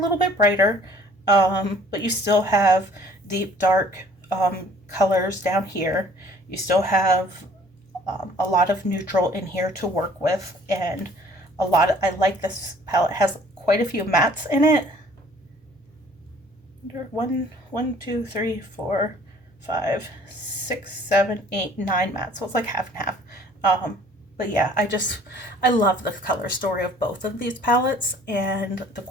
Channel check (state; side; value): normal; both; correlation 0.54